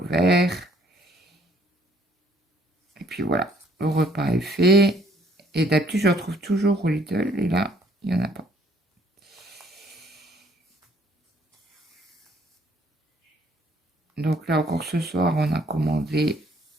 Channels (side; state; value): both; normal; correlation 0.63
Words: verts. Et puis voilà, le repas est fait. Et d'habitude, je retrouve toujours au Lidl. Et là, il n'y en a pas. Donc là, encore ce soir, on a commandé